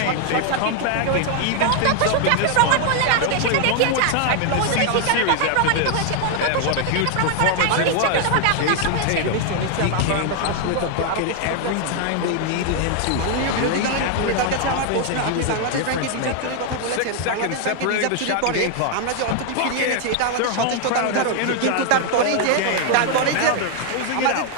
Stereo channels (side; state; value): both; different; correlation 0.00